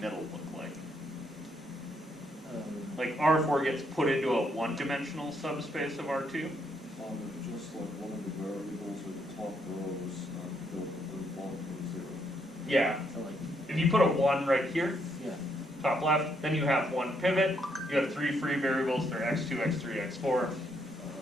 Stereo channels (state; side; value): normal; both; correlation 0.74